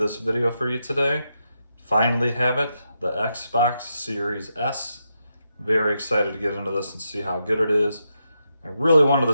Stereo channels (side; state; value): both; inverted; correlation -0.83